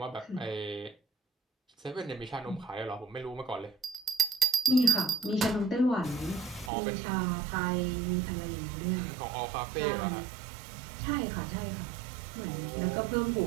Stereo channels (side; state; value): left; drops out; at 6.7 s